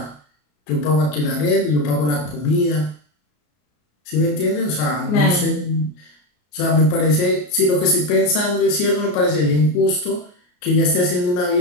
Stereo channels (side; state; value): right; late; 33 ms